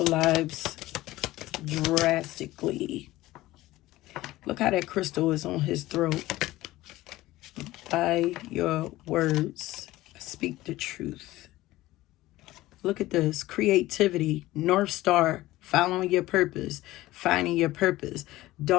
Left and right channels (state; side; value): quieter; right; 17.2 dB